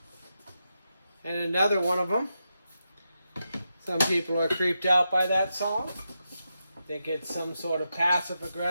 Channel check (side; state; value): both; inverted; correlation -0.87